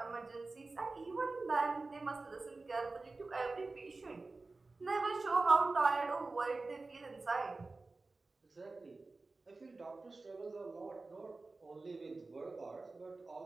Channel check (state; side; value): quieter; left; 3.5 dB